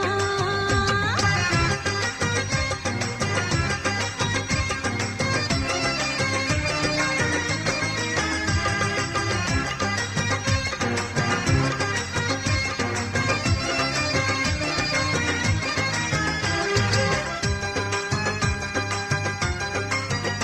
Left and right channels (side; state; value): both; identical; correlation 1.00